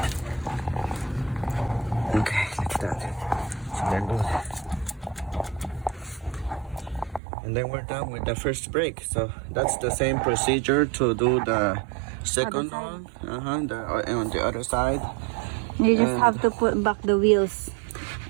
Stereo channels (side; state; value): left; drops out; at 7.2 s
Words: Okay, like that. So they're good. And then we're done with the first brake. So that's the same procedure to do the second one. On the other side. You just have to put back the wheels.